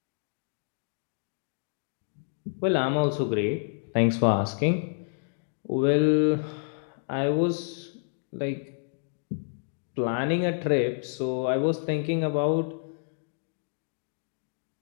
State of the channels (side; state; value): right; silent; digital silence